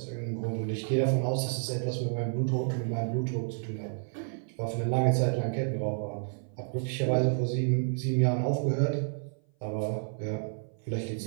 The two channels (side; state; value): left; silent; 56 dB below the other